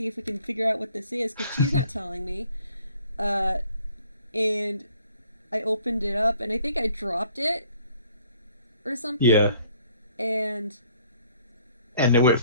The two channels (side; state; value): both; inverted; correlation -0.60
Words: if we can figure out what this is," because she's not telling me. And I opened it up, and I think I dropped it, or something. Yeah. And And it went